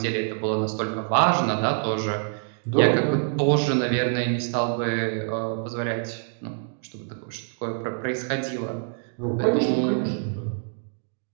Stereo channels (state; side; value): silent; left; 61 dB below the other